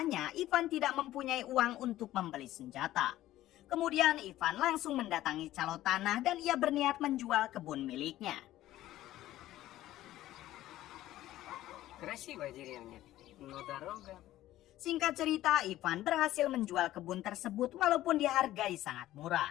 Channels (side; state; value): right; quieter; 14.6 dB